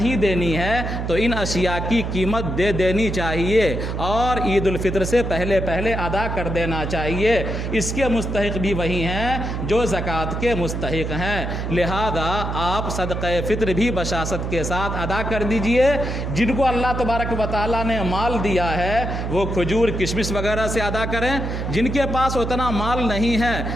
دینی ہے تو ان اشیاء کی قیمت دے دینی چاہیے, اور عید الفطر سے پہلے ادا کر دینا چاہیے. اس کے مستحق بھی وہی ہیں جو زکوٰۃ کے مستحق ہیں. لہذا آپ صدقہ فطر بھی بشاشت کے ساتھ ادا کر دیجئے. جن کو اللہ تبارک و تعالیٰ نے مال دیا ہے وہ کھجور کشمش وغیرہ سے ادا کریں. جن کے پاس اتنا مال نہیں ہے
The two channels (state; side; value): noise; right; hum, 3 dB below the sound